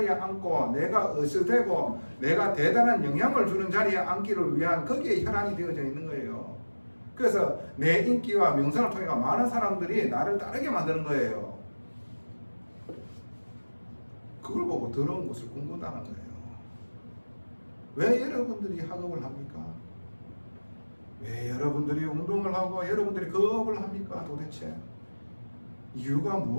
앉고 내가 으스대고 내가 대단한 영향을 주는 자리에 앉기를 위한 거기에 혈안이 되어져 있는 거예요. 그래서 내 인기와 명성을 통해 많은 사람들이 나를 따르게 만드는 거예요. 그걸 보고 더러운 것을 꿈꾼다는 거예요. 왜 여러분들이 학업을 합니까? 왜 여러분들이 운동을 하고 여러분들이 거업을 합니까? 도대체 이유가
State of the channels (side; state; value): both; inverted; correlation -1.00